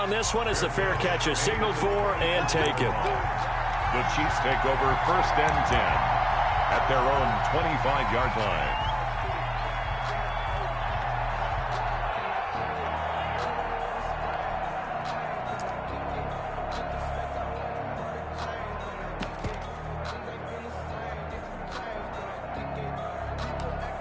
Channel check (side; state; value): both; identical; correlation 1.00